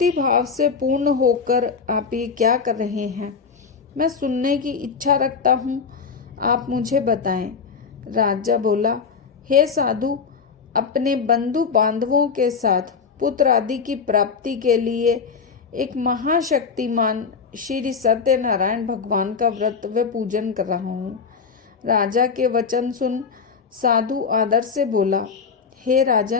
भाव से पूर्ण होकर आप ये क्या कर रहे हैं? मैं सुनने की इच्छा रखता हूँ, आप मुझे बताएं। राजा बोला, हे साधु, अपने बंधु बांधवों के साथ पुत्र आदि की प्राप्ति के लिए एक महाशक्तिमान श्री सत्यनारायण भगवान का व्रत व पूजन कर रहा हूँ। राजा के वचन सुन साधु आदर से बोला, हे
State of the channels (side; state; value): right; quieter; 5.6 dB